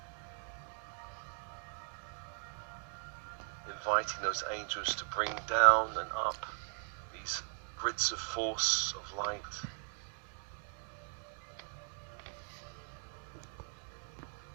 Inviting those angels to bring down and up these grids of force, of light.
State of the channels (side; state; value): left; silent; 52 dB below the other